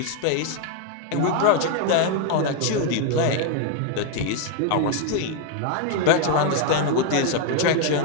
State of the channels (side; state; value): both; different; correlation 0.01